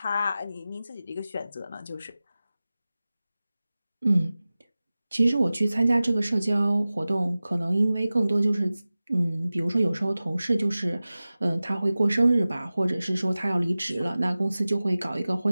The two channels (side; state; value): both; inverted; correlation -0.97